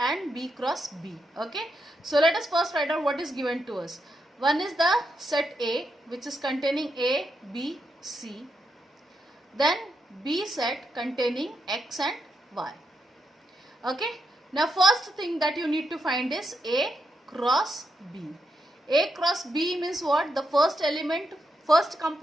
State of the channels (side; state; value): both; normal; correlation 0.82